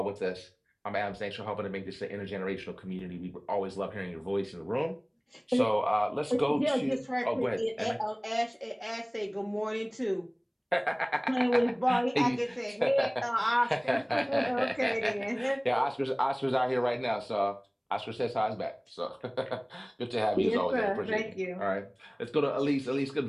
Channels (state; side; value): identical; both; correlation 1.00